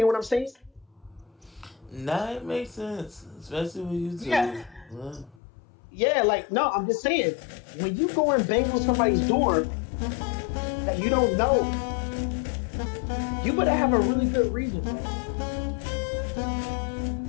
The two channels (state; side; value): drops out; right; at 5.4 s